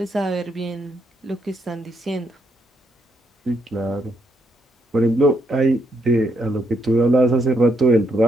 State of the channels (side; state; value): both; normal; correlation 0.76